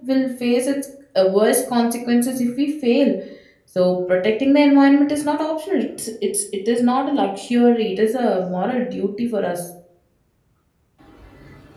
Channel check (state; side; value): identical; both; correlation 1.00